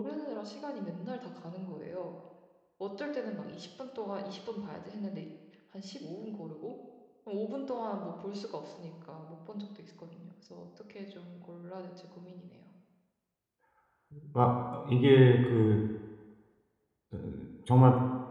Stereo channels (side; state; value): both; identical; correlation 1.00